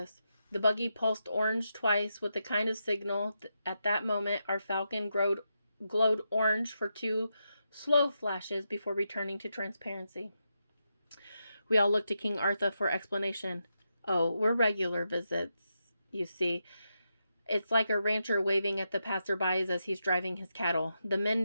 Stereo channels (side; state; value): both; inverted; correlation -0.85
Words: The buggy pulsed orange twice with the kind of signal. At that moment, our Falcon glowed orange for 2 slow flashes before returning to transparency. We all looked to King Arthur for explanation. Oh, we're regular visits, you see. It's like a rancher waving at the passerbys as he's driving his cattle. The men